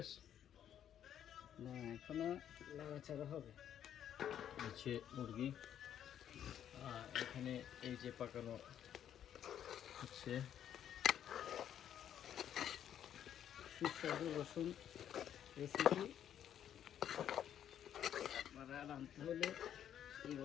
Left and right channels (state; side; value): quieter; right; 10.0 dB